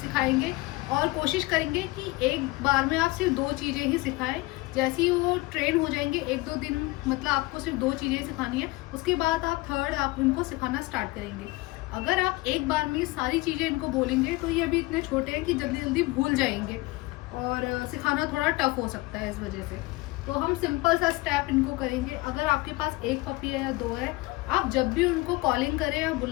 सिखाएंगे और कोशिश करेंगे कि एक बार में आप सिर्फ 2 चीज़ें ही सिखाएं। जैसे ही वो ट्रेन हो जाएंगे 1-2 दिन, मतलब आपको सिर्फ 2 चीज़ें सिखानी है, उसके बाद आप थर्ड आप इनको सिखाना स्टार्ट करेंगे। अगर आप एक बार में सारी चीज़ें इनको बोलेंगे तो ये अभी इतने छोटे हैं कि जल्दी जल्दी भूल जाएंगे और सिखाना थोड़ा टफ हो सकता है इस वजह से। तो हम सिंपल सा स्टेप इनको करेंगे। अगर आपके पास 1 पपी है या 2 है, आप जब भी उनको कॉलिंग करें या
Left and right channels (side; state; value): right; quieter; 21.6 dB